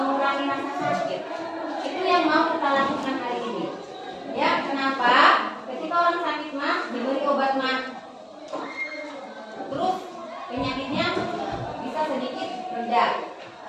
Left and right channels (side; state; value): both; identical; correlation 1.00